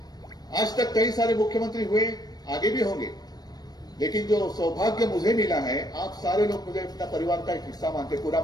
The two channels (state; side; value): late; right; 0.19 ms